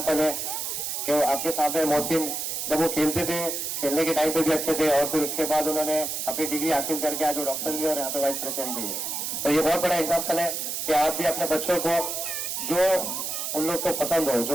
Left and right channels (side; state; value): right; noise; hiss, 3 dB below the sound